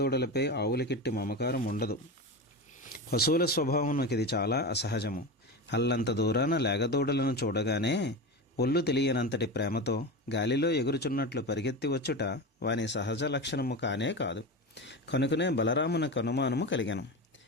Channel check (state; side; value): normal; both; correlation 0.23